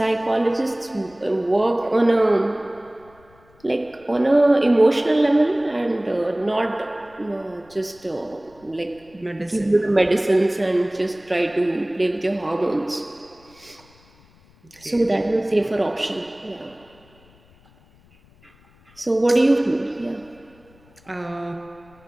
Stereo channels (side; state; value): left; noise; rumble, 29 dB below the sound